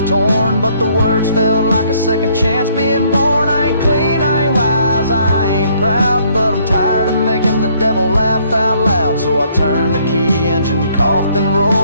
torn, but the words felt like a second chance being born. I ain't clean, I ain't wise, I ain't proud, but I'm tired of making the devil laugh out loud. So I turned the key, engine coughed and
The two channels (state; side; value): inverted; both; correlation -0.66